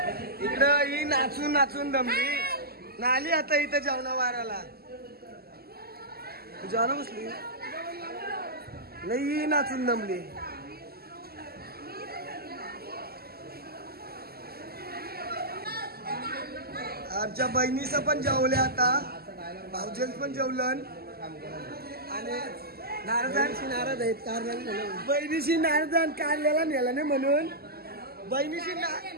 इकडं ही नाचून नाचून दमली नाली आता इथं जेवणा वाराला. तू जेवणा बसली नाही, ही नाचून दमली. आमच्या बहिणीचं पण जेवले आता, भाऊजेंच पण जेवलं आणि नारदांशी नाराज आहेत कारल्याला. बहिणीशी नारदान कारल्याला नेला नाही म्हणून, बहिणीशी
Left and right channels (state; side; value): late; left; 0.45 ms